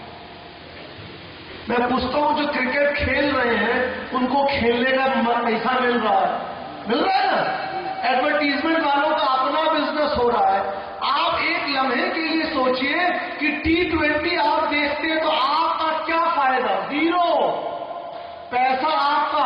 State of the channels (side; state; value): both; identical; correlation 1.00